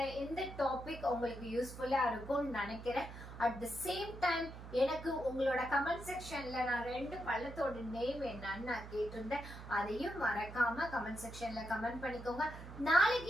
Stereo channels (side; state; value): right; noise; hum, 12 dB below the sound